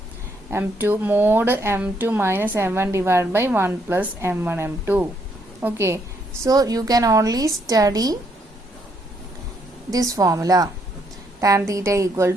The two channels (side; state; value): both; normal; correlation 0.73